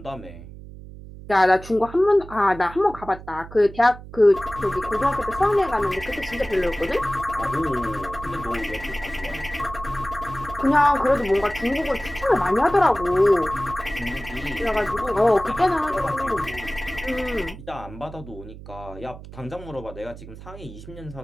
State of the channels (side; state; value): right; noise; hum, 15 dB below the sound